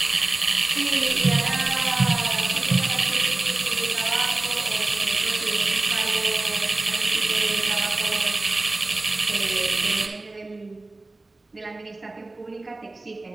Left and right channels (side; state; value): left; quieter; 3.1 dB